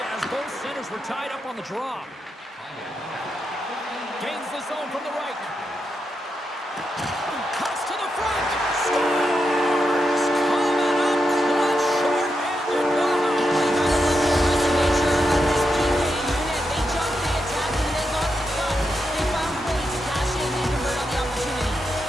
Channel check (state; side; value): normal; both; correlation 0.85